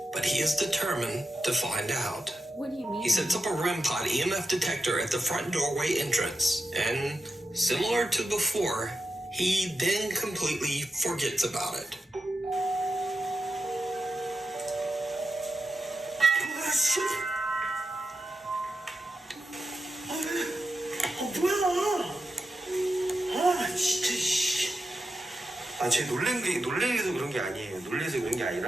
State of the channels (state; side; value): normal; both; correlation 0.89